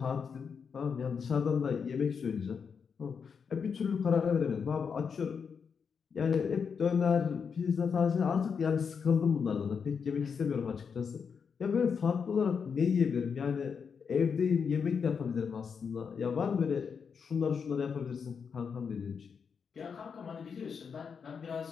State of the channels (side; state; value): right; quieter; 6.3 dB